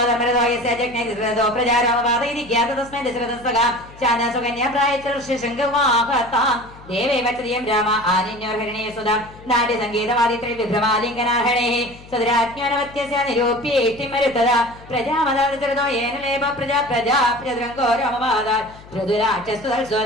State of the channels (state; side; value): noise; left; hum, 20 dB below the sound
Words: ജഗ്നേ ധൃതോ പ്രജാരോമവാദൈരിക്യാത തസ്മൈ ദശരഥസ്തകാ ശാനാസുകന്യാ പ്രായച്ചർഷശങ്കവാഹതാം ദേവേ വചതിയം രാമ ആനിന്യോർഹരണേ സുധാം നാട്യ സംഗീതവാദിത്രേ വിഭ്രമാലിംഗനാഹരണേ സദരാജ്ഞാനവത്യസ്യ നിരൂപ്യേഷ്ടിമരുത്തദാ പ്രജാമദാദൃതോ യേന ലേപ പ്രജാ പ്രജാ പ്രജദ്രംഗോ രാമവാദാ